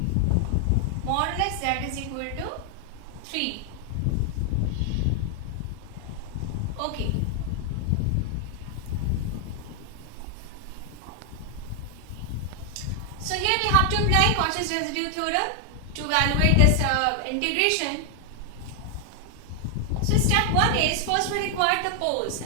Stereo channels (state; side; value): different; both; correlation 0.00